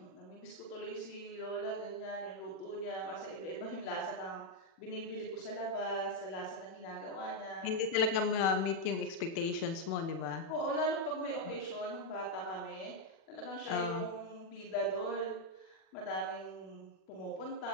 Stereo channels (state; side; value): late; right; 36 ms